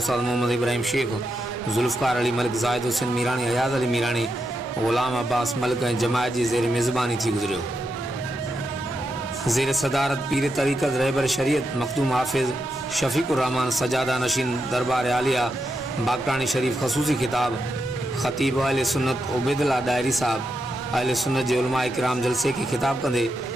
محمد ابراہیم شیخ، ذوالفقار علی ملک، زاہد حسین میرانی، حیات علی میرانی، غلام عباس ملک جماعت جی زیر میزبانی تھی گزریو۔ زیر صدارت پیر طریقت رہبر شریعت مخدوم حافظ شفیق الرحمان سجادہ نشین دربار عالیہ باکرانی شریف خصوصی خطاب خطیب اہل سنت عبید اللہ ڈائری صاحب اہل سنت جے علماء کرام جلسے کی خطاب کندے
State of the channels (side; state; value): both; normal; correlation 0.85